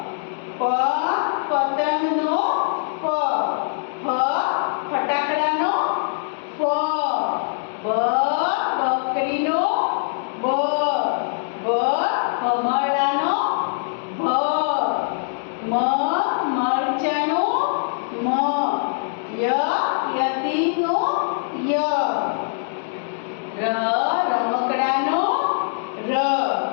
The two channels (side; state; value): right; silent; digital silence